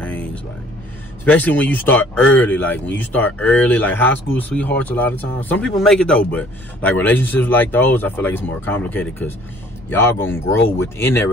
like especially when you start early. Like when you start early, like high school sweethearts, a lot of times some people make it though, but like relationships like those, I feel like it's more complicated because y'all gonna grow within that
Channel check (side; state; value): both; normal; correlation 0.56